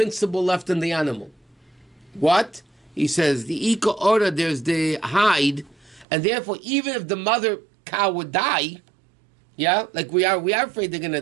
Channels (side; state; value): left; drops out; at 6.1 s